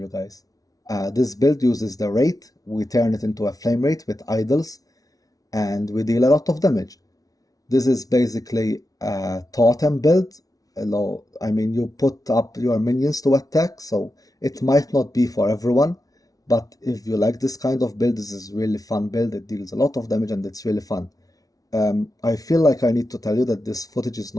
guys. This build uses the Wraith. We turn it into a Flame Wraith with idols, and we deal a lot of damage. This is basically a totem build. You put up your minions to attack, so it might not be for everyone, but if you like this kind of build, this is really fun build. It deals a lot of damage and it's really fun. I feel like I need to tell you that this footage is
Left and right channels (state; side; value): late; right; 0.18 ms